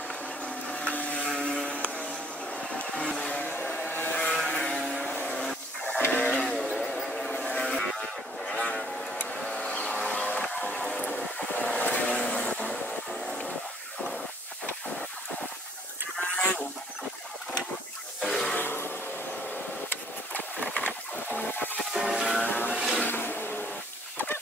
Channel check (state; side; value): normal; both; correlation 0.60